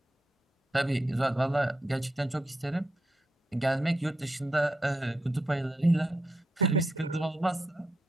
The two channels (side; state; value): both; normal; correlation 0.83